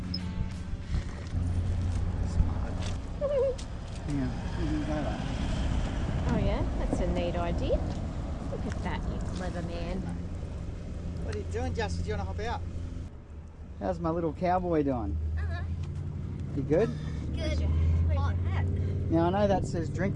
Oh yeah, that's a neat idea. Look at that, you clever man. What are you doing, Justin? Do you want to hop out? How's my little cowboy doing? You good? Good. Hot hat. Now I know that says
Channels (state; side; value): identical; both; correlation 1.00